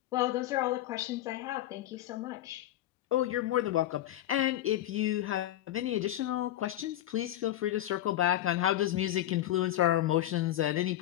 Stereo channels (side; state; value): right; quieter; 13.6 dB